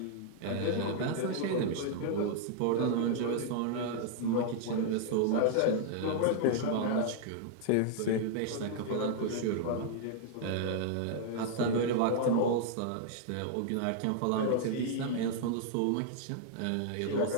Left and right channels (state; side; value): different; both; correlation -0.01